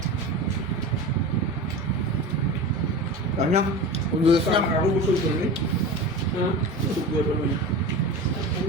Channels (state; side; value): normal; both; correlation 0.30